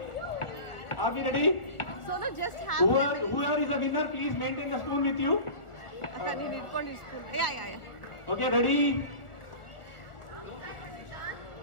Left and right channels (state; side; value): late; right; 1.4 ms